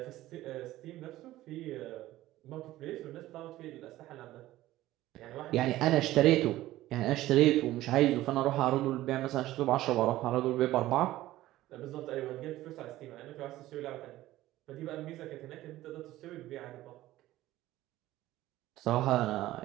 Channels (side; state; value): left; quieter; 15.7 dB